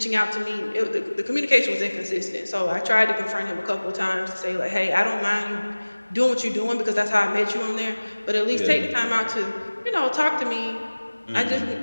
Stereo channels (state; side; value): inverted; both; correlation -1.00